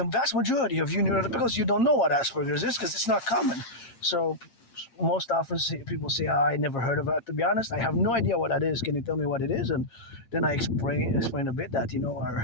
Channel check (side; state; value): right; late; 8.8 ms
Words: vast majority of you neurotypicals, you don't know what Asperger's is because it's not common. So most often people say, I never heard of it. To be honest, I have no idea what that is. Can you tell me what it is? And then I explain a bit that,